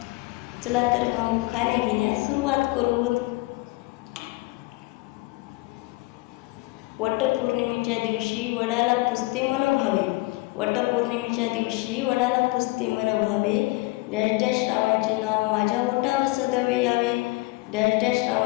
चला तर मग उखाणे घेण्यास सुरुवात करू. वटपौर्णिमेच्या दिवशी वडाला पुजते मन भावे. वटपौर्णिमेच्या दिवशी वडाला पुजते मन भावे. डॅश डॅश रावांचे नाव माझ्या ओठावर सदैव यावे. डॅश डॅश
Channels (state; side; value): quieter; right; 22.4 dB